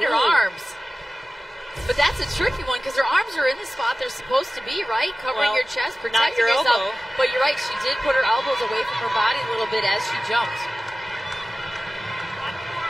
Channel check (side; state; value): both; normal; correlation 0.96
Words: her arms. But that's a tricky one because her arms are in the spot they're supposed to be, right? Covering your chest, protecting yourself. Elbow. But you're right, she did put her elbows away from her body a little bit as she jumped.